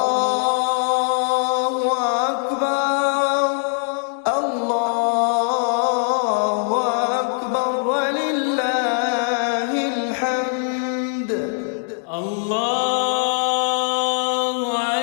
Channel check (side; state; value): right; silent; digital silence